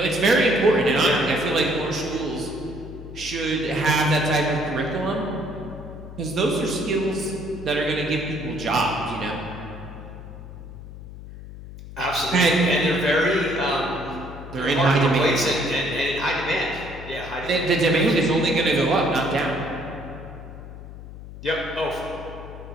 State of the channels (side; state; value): left; noise; hum, 13 dB below the sound